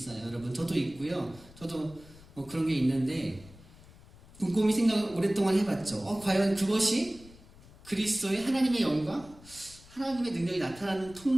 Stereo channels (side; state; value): left; noise; rumble, 22 dB below the sound